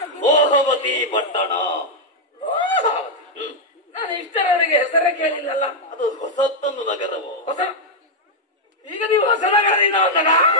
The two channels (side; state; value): both; normal; correlation -0.02